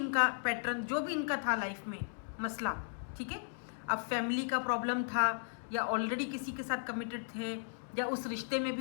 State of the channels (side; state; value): right; silent; digital silence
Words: पैटर्न, जो भी इनका था लाइफ में मसला, ठीक है, अब फैमिली का प्रॉब्लम था या ऑलरेडी किसी के साथ कमिटेड थे या उस रिश्ते में